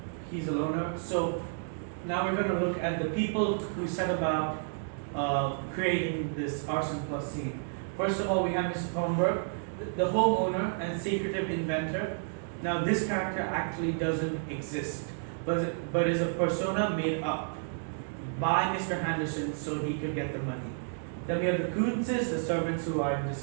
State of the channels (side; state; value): left; silent; digital silence